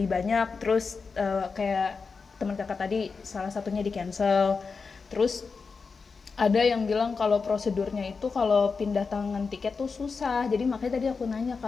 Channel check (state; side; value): quieter; right; 4.9 dB